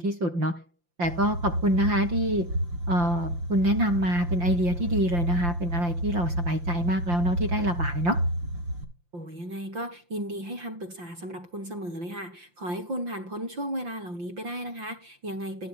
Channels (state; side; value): late; left; 5.8 ms